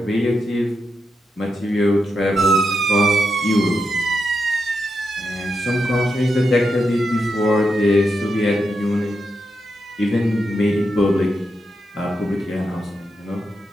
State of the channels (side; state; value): both; normal; correlation 0.85